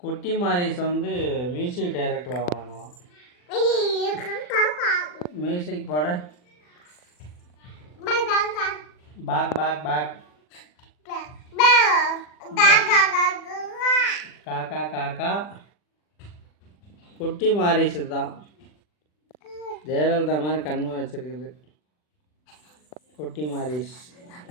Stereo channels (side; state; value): right; late; 40 ms